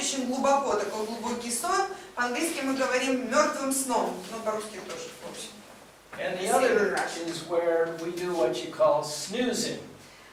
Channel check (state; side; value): identical; both; correlation 1.00